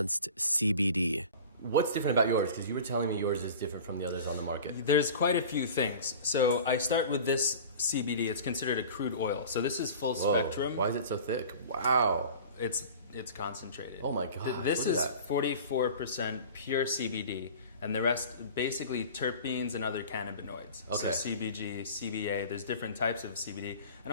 CBD. What's different about yours? Because you were telling me yours is different from the others on the market. There's quite a few things. So I start with this CBD. It's considered a crude oil. So this is full spectrum. Why is it so thick? Wow. It's concentrated. Oh my God. This is 44% pure CBD. and the rest basically terpenes and other cannabinoids. Okay. So CBG, CBA, there's different types of CBD,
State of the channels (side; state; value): both; inverted; correlation -0.39